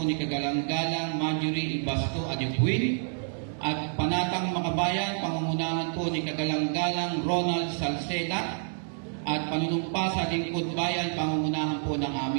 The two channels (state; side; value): silent; left; 59 dB below the other